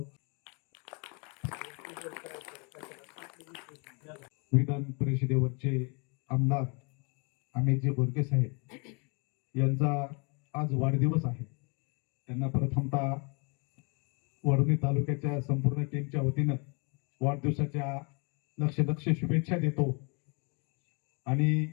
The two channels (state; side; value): quieter; right; 33.7 dB